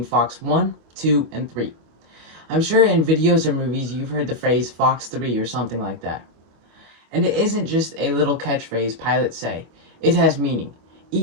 Fox 1, 2, and 3. I'm sure in videos or movies you've heard the phrase Fox 3 or something like that. And it isn't just a little catchphrase pilots say. It has meaning.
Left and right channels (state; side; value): late; left; 25 ms